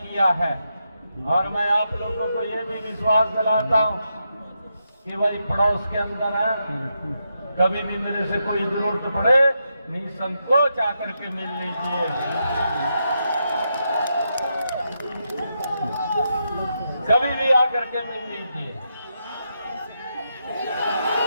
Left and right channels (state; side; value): inverted; both; correlation -0.84